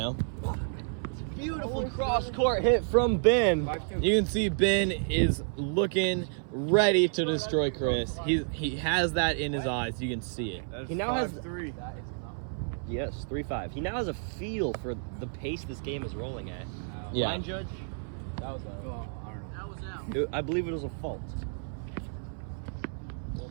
Beautiful cross-court hit from Ben. You can see Ben is looking ready to destroy Chris. He has that in his eyes. You can see it. That's He now has- 5-3. Yes, 3-5. He now has a feel for the pace this game is rolling at. Yeah. Line judge, That was well, I don't know. That was out. I believe it was a fault.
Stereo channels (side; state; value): left; silent; 57 dB below the other